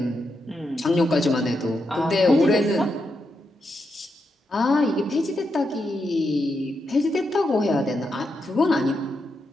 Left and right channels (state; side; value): normal; both; correlation 0.84